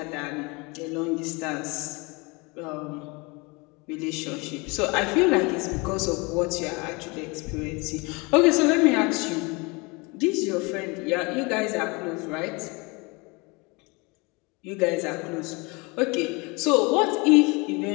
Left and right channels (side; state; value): right; quieter; 27.4 dB